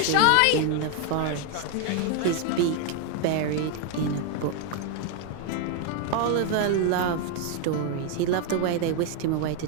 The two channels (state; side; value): different; both; correlation 0.01